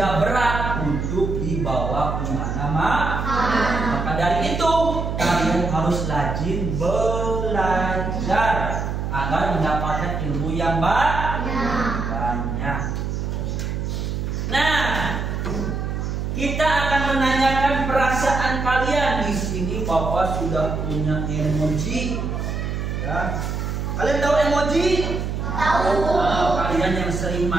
berat untuk dibawa kemana-mana. Maka dari itu kalian harus rajin belajar agar mendapatkan ilmu yang banyak. Nah, kita akan menanyakan perasaan kalian. Di sini Bapak sudah punya emoji. Ya. Kalian tahu emoji? Tahu. Kalian yang sering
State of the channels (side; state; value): right; noise; hum, 3 dB below the sound